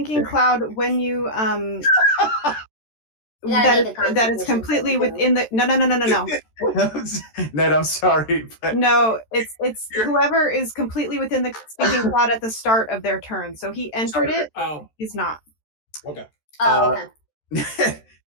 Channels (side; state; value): right; late; 13 ms